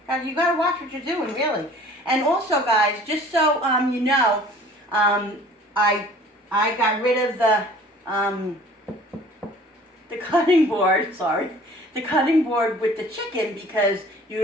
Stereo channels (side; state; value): both; normal; correlation 0.50